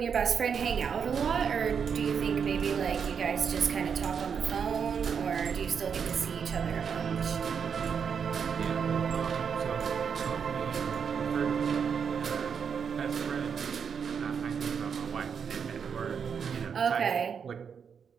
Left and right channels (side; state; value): left; quieter; 6.8 dB